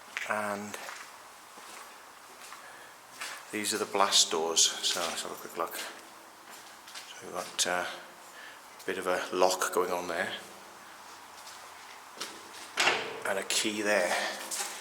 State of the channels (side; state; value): both; identical; correlation 1.00